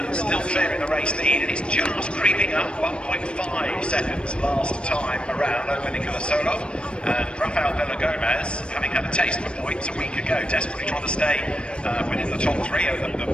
still clearing the race lead, and it's just creeping up 1.5 seconds last time around over Nicola Solov. And Rafael Villagomez, having had a taste for points a week ago, desperately trying to stay within the top three.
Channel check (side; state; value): right; late; 0.056 ms